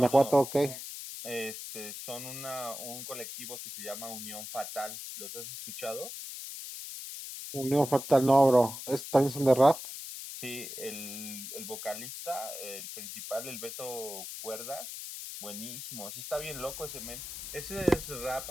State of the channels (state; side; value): noise; left; hiss, 9 dB below the sound